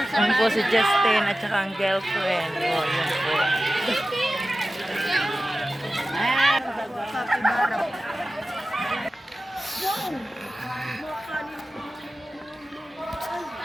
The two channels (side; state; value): both; normal; correlation 0.94